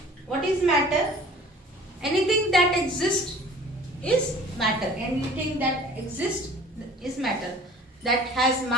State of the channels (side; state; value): both; normal; correlation 0.47